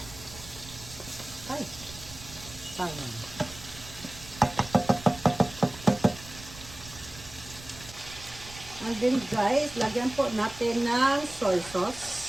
Ay, sayang. And then guys, lagyan po natin ng soy sauce.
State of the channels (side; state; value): right; noise; rumble, 16 dB below the sound